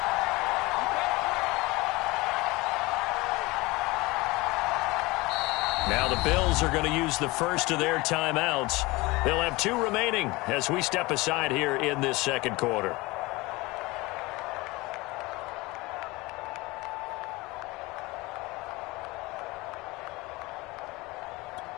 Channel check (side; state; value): right; quieter; 22.4 dB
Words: Now the Bills are going to use the first of their timeouts. They'll have 2 remaining as we step aside here in this second quarter.